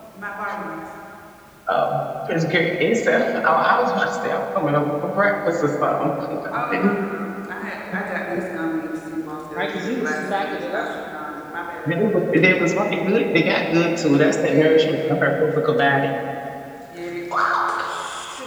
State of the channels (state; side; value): identical; both; correlation 1.00